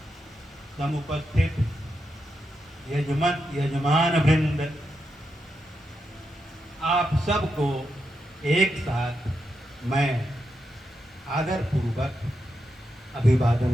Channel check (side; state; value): both; normal; correlation 0.85